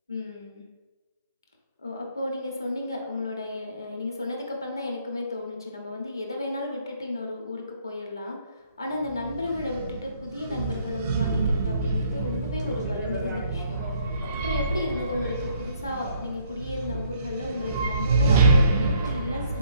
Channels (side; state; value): both; inverted; correlation -0.65